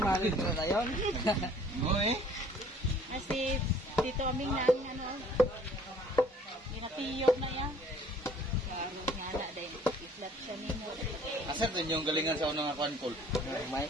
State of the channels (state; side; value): normal; both; correlation 0.55